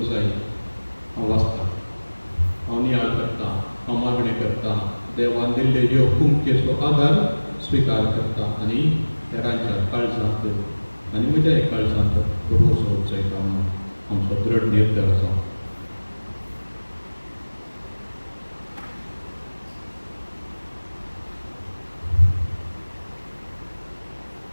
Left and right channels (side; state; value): both; inverted; correlation -1.00